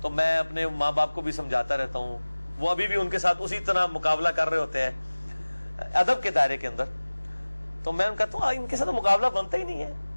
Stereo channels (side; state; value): both; inverted; correlation -1.00